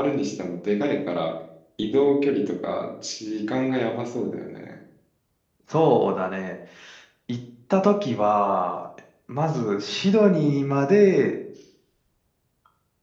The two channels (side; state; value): both; identical; correlation 1.00